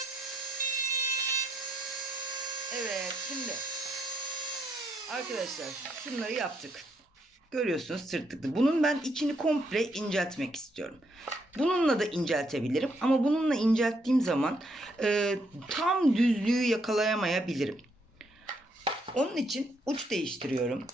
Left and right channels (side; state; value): both; normal; correlation 0.74